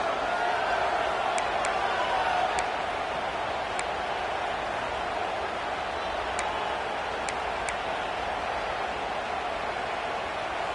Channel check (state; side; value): identical; both; correlation 1.00